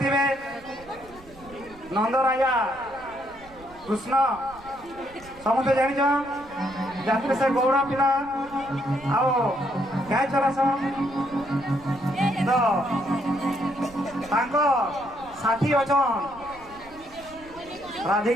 নন্দ রাজা কৃষ্ণ ସମସ୍ତେ ଜାଣିଛ ରାତିରେ ସେ ଗୌଡ଼ ପିଲା ଆଉ ଗାଈ ଚରାସନ୍ ତ ତାଙ୍କ ସାଥୀ ଅଛନ୍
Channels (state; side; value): noise; right; rumble, 22 dB below the sound